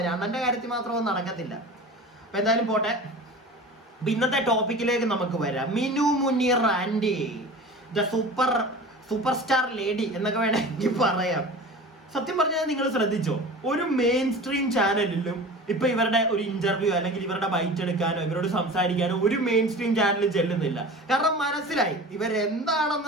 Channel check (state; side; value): normal; both; correlation 0.36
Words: അണ്ണന്റെ കാര്യത്തിൽ മാത്രമൊന്നും നടക്കത്തില്ല. അപ്പൊ എന്തായാലും പോട്ടെ. ഇന്നത്തെ ടോപ്പിക്കിലേക്ക് നമുക്ക് വരാം. മിനു മുനീർ ആൻഡി ദ സൂപ്പർ സ്റ്റാർ ലേഡി എന്നൊക്കെ വേണമെങ്കിൽ പറയാം. സത്യം പറഞ്ഞാൽ നിങ്ങൾ ശ്രദ്ധിച്ചോ, ഒരു മെയിൻ സ്ട്രീം ചാനലിലും ഇപ്പൊ ഇവരുടെ ഒരു ഇന്റർവ്യൂ അല്ലെങ്കിൽ ഇവരുടെ ബൈറ്റ് എടുക്കാനോ ഇവരോട് സംസാരിക്കാനോ ഒരു മെയിൻ സ്ട്രീം ചാനലിൽ ചെല്ലുന്നില്ല. കാരണം മനസ്സിലായി